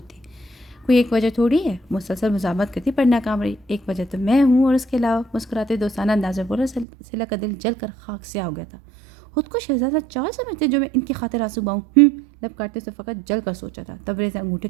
تھی. کوئی ایک وجہ تھوڑی ہے، مسلسل مزاحمت کرتی پر ناکام رہی. ایک وجہ تو میں ہوں اور اس کے علاوہ مسکراتے دوستانہ انداز میں بولا. سلا کا دل جل کر خاک سیاہ ہو گیا تھا. خود کو شہزادہ چال سمجھتے جو میں ان کی خاطر آنسو باؤں. لب کاٹتے سے فقط جل کر سوچا تھا. تبریز نے انگوٹھے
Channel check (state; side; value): drops out; left; at 6.9 s